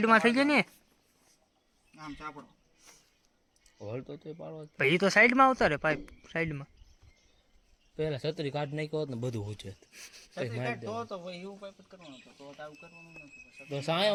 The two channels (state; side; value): identical; both; correlation 1.00